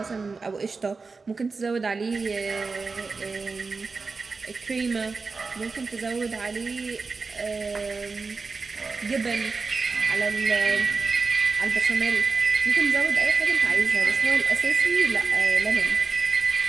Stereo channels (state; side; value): quieter; left; 4.3 dB